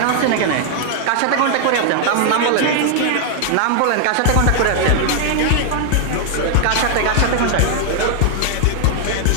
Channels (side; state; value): both; different; correlation 0.00